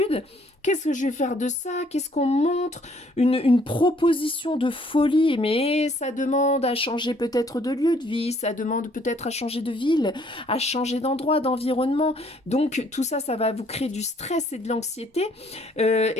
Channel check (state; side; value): normal; both; correlation 0.63